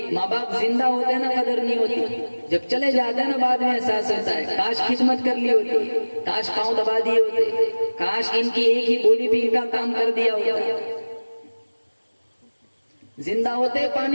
माँ बाप जिंदा होते हैं ना, कदर नहीं होती, जब चले जाते हैं ना बाद में एहसास होता है, काश खिदमत कर ली होती, काश पांव दबा दिए होते, काश इनकी एक ही बोली भी इनका काम कर दिया होता। जिंदा होते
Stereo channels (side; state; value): both; inverted; correlation -1.00